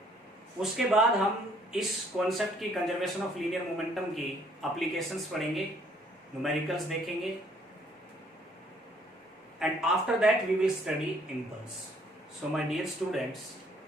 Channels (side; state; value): both; normal; correlation 0.62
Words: उसके बाद हम इस कॉन्सेप्ट की कंजर्वेशन ऑफ लीनियर मोमेंटम की एप्लीकेशंस पढ़ेंगे, न्यूमेरिकल्स देखेंगे, and after that we will study impulse. So my dear students,